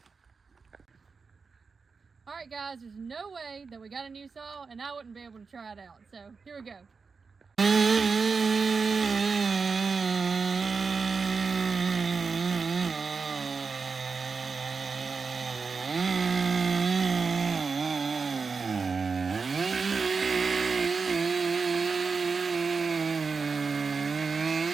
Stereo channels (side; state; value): left; quieter; 4.9 dB